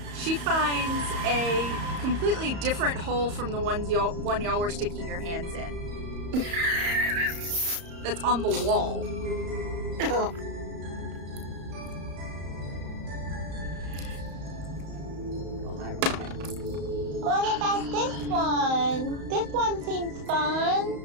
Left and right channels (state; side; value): late; left; 34 ms